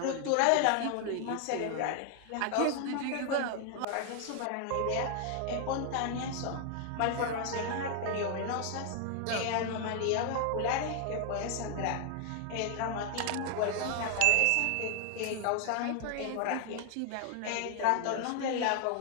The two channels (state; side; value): different; both; correlation 0.00